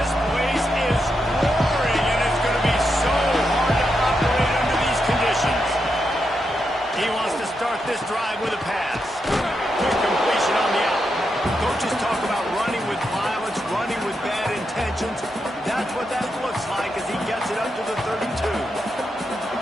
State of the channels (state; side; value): normal; both; correlation 0.84